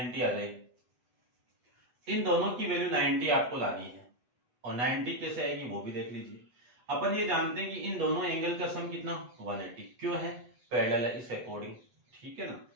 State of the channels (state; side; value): late; left; 8.3 ms